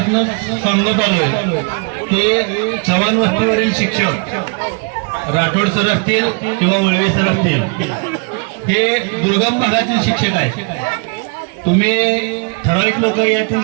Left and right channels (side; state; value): left; quieter; 35.2 dB